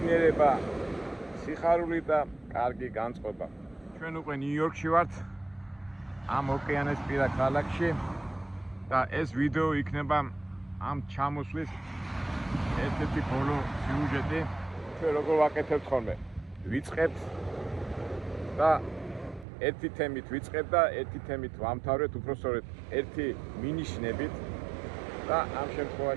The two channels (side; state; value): left; drops out; at 19.5 s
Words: სიხარული და კარგი განწყობა. ჩვენ უკვე ნიუ-იორკში ვართ, ამ ოკეანესპირა ქალაქში და ეს ვიდეო იქნება ამ ჩამოსვლის ერთ-ერთი ბოლო სიუჟეტი. ჩვენ როგორ ვაკეთებთ ხოლმე? ვიწყებთ და ერთი თემით ვიწყებ და ერთი თემით ვამთავრეთ, უпростоრეთ ერთი მინიშნებით. და ამ